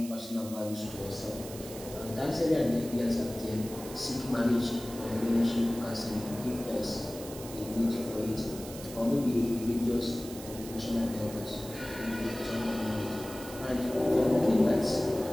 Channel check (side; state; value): right; noise; hiss, 14 dB below the sound